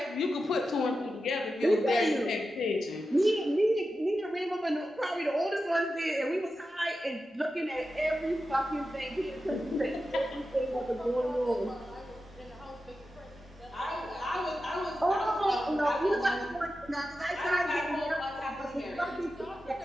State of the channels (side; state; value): both; normal; correlation 0.91